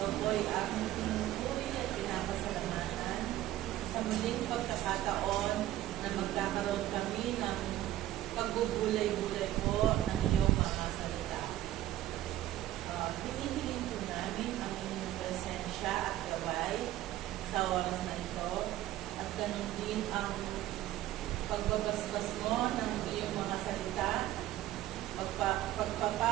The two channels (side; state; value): left; quieter; 14.0 dB